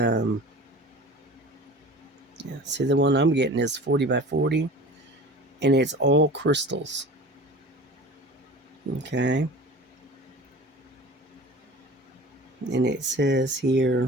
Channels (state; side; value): normal; both; correlation 0.39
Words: see, the one I'm getting is 40 by 40, and it's all crystals. Okay. And it says